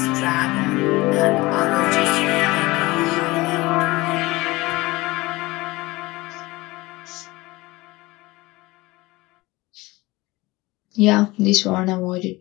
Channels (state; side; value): quieter; right; 21.1 dB